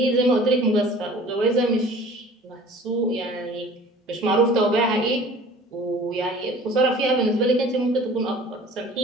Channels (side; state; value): both; normal; correlation 0.46